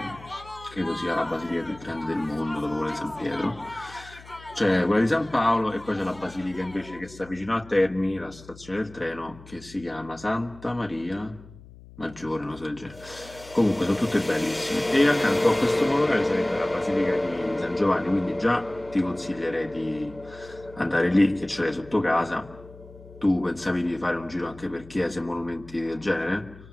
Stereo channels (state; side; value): noise; left; hum, 20 dB below the sound